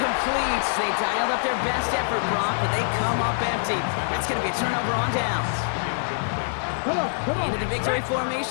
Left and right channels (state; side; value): silent; right; 62 dB below the other